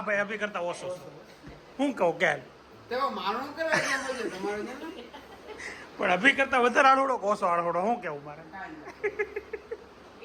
ભાઈ અભી કરતા ઓછો હું કહું કે પણ અભી કરતા વધારે આળહોડો ઓછો આળહોડો હું કેવું મારે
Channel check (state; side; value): identical; both; correlation 1.00